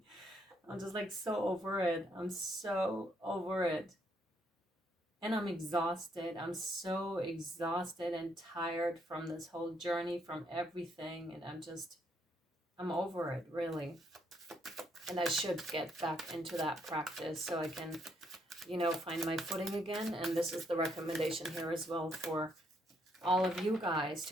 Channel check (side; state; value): both; normal; correlation 0.73